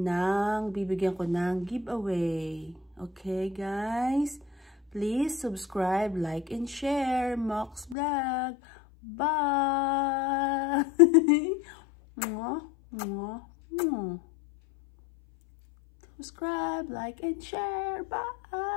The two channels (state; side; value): drops out; right; at 8.0 s